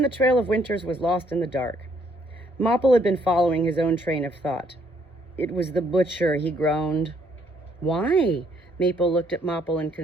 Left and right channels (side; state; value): both; normal; correlation 0.68